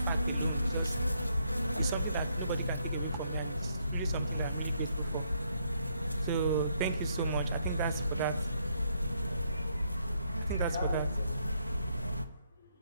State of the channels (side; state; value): both; inverted; correlation -0.73